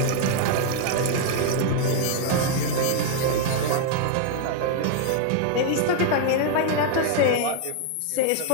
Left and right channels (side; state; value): both; different; correlation 0.00